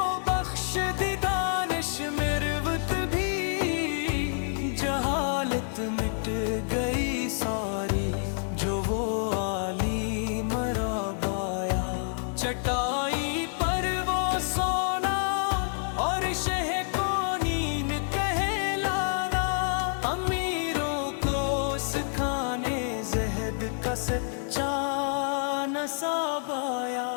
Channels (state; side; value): silent; right; digital silence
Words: بخش دی دانش مروت بھی، جہالت مٹ گئی ساری جو وہ عالی مراب آیا، چٹائی پر وہ سونا اور شہ کو نیند کہلانا، امیروں کو سکھانے زہد کا سچا نصاب آیا،